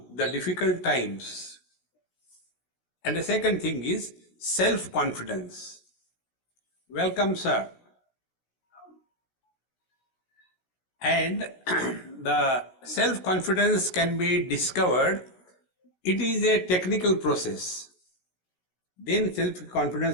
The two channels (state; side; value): late; right; 16 ms